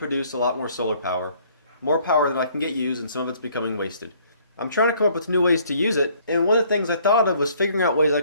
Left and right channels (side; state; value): both; inverted; correlation -0.61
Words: a lot more solar power. More power than I can get used, and some of it's becoming wasted. I'm trying to come up with new ways to use it, and one of the things I thought of was figuring out ways I